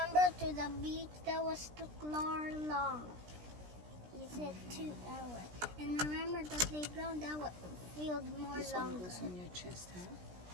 to the beach, that was too long. You said 2 hours. And remember the playground, that would feel more This one longer. goes on your chest, ha?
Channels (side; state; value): left; late; 17 ms